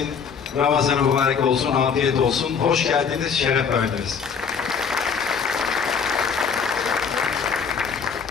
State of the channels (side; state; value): right; quieter; 6.3 dB